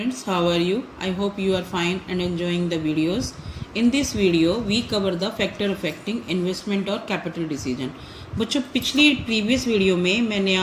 how are you? I hope you are fine and enjoying the videos. In this video, we cover the factor affecting investment और capital decision. बच्चों, पिछली previous video में मैंने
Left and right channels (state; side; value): identical; both; correlation 1.00